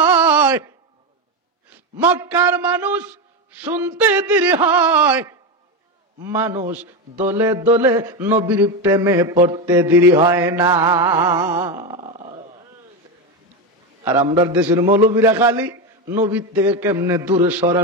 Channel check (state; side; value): normal; both; correlation 0.14